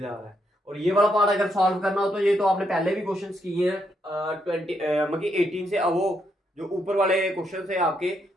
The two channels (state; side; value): normal; both; correlation 0.77